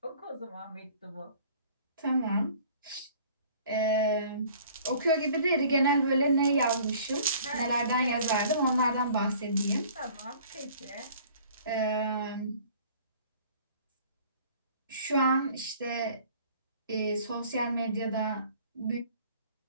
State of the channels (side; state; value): both; inverted; correlation -0.52